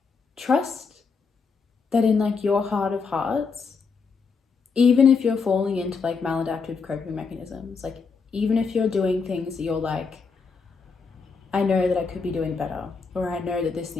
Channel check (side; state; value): right; quieter; 5.1 dB